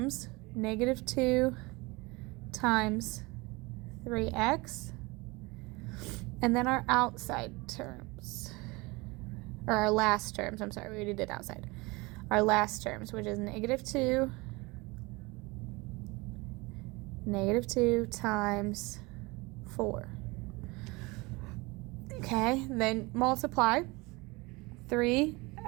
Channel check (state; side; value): quieter; left; 24.5 dB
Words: negative 2 times 3x, and then our outside terms, or our last terms, I'm sorry, we already did outside. Our last terms, which is negative 2 times 4. Okay, then multiply